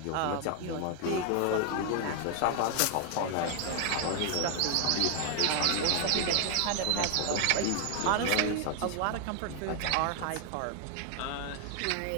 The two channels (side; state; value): both; different; correlation 0.00